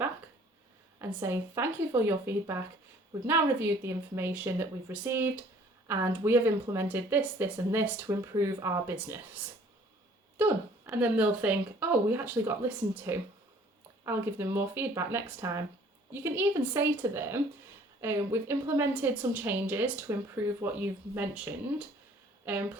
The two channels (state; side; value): normal; both; correlation 0.55